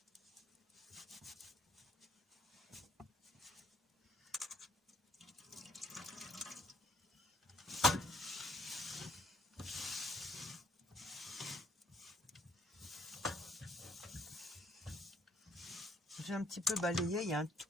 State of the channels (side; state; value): both; normal; correlation 0.66